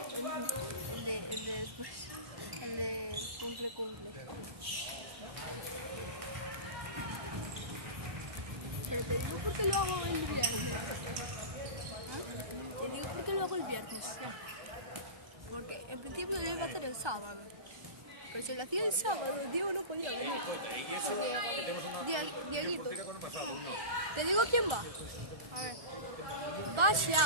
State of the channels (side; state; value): left; late; 1.3 ms